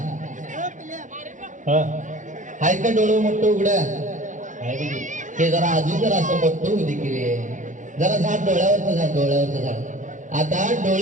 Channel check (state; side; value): late; left; 0.36 ms